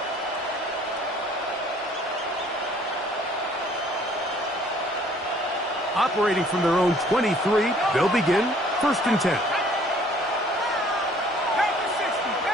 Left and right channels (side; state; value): both; normal; correlation 0.57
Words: Operating from their own 23, they'll begin 1st and 10.